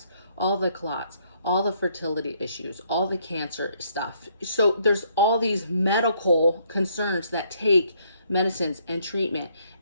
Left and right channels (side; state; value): both; inverted; correlation -0.68